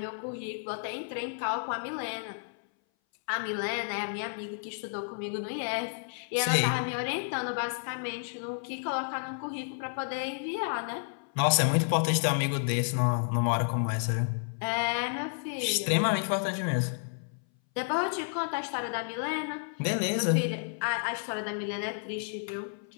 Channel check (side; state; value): right; silent; 57 dB below the other